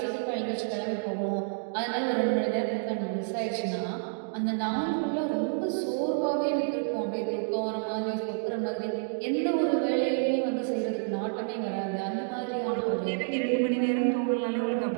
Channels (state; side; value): silent; left; digital silence